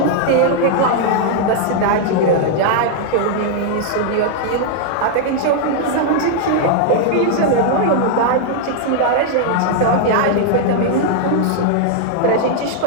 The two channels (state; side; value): different; both; correlation -0.01